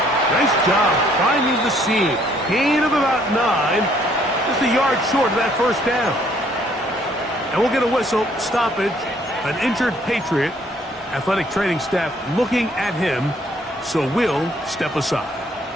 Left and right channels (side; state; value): both; normal; correlation 0.64